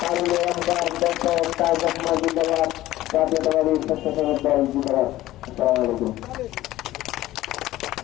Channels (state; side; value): quieter; right; 15.7 dB